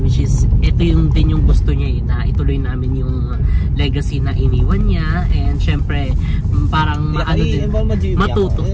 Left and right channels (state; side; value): identical; both; correlation 1.00